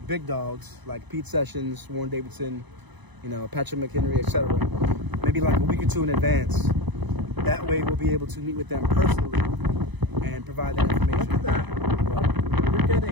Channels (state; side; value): late; left; 1.0 ms